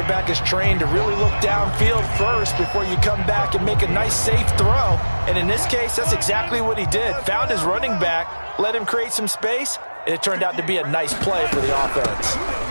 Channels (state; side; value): inverted; both; correlation -1.00